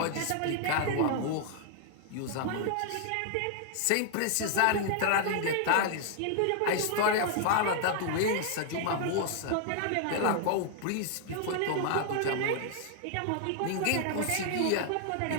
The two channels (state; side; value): different; both; correlation 0.00